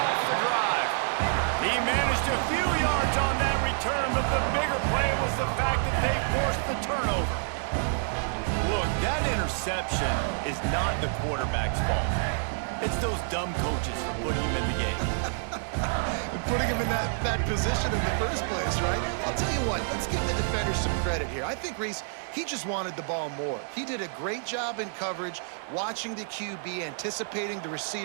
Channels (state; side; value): silent; left; 59 dB below the other